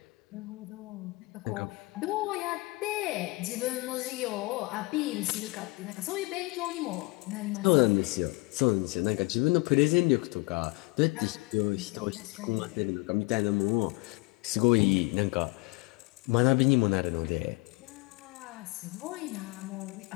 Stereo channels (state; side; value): quieter; right; 26.4 dB